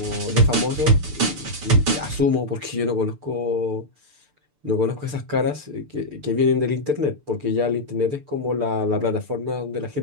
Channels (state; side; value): late; left; 6.8 ms